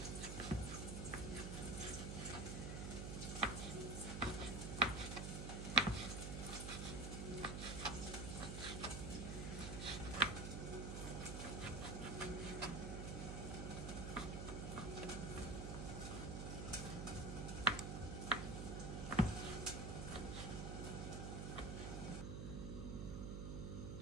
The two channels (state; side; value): noise; right; hum, 3 dB below the sound